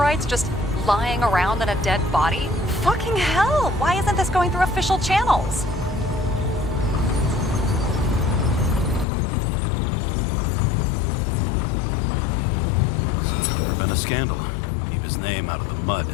just lying around in a dead body? Fucking hell! Why isn't this going through official channels? There's been a scandal. Keep his name out of the mud.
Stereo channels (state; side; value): drops out; right; at 9.1 s